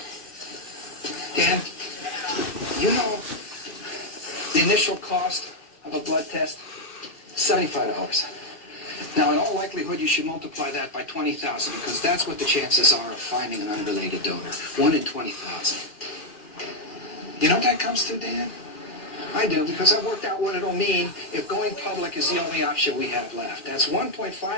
Dan, you know the initial cost of a blood test? $75. Now, in all likelihood, you should multiply that by 20,000 because that's what the chances are of finding an unrelated donor. 1 in 20,000. You know what that comes to, Dan? I do, because I've worked out what it'll mean if going public is the only option we have left. That's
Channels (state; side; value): late; right; 2.4 ms